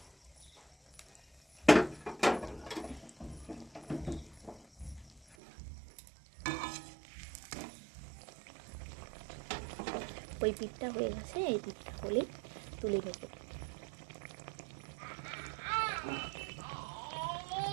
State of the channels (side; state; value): left; drops out; at 5.4 s